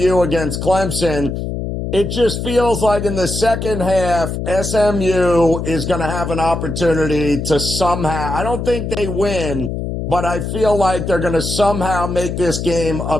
against Clemson. It just feels like in the second half, SMU is going to have an opportunity to somehow, I don't think they win, but I feel like they're going to somehow make this game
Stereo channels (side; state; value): left; noise; hum, 4 dB below the sound